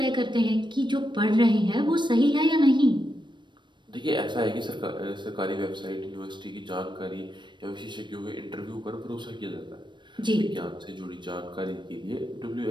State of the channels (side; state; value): left; late; 0.22 ms